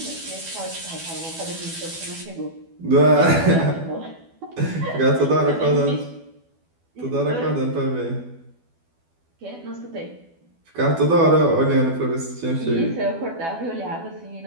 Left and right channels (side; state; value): left; late; 12 ms